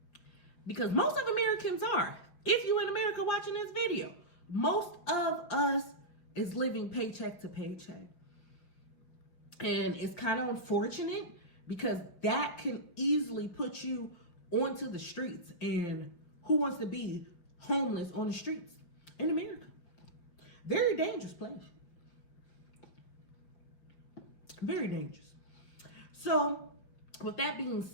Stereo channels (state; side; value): late; right; 5.7 ms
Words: because most of Americans are. If you in America watching this video, most of us is living paycheck to paycheck. And it's kind of unfortunate because that can easily put you onto the streets. And who wants to be homeless on the streets in America? Very dangerous place. Very dangerous. So with that being